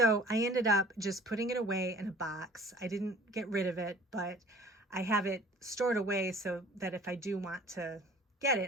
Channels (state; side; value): normal; both; correlation 0.49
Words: I ended up just putting it away in a box. I didn't get rid of it, but I have it stored away so that if I do want to get